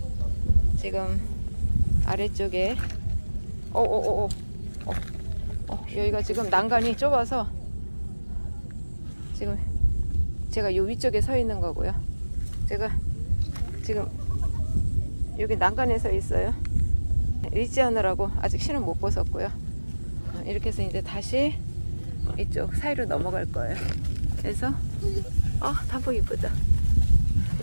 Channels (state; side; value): inverted; both; correlation -1.00